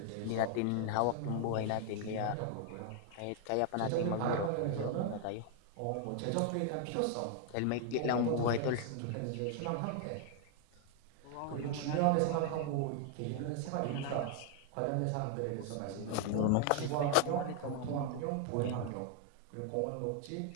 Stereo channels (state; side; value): different; both; correlation 0.00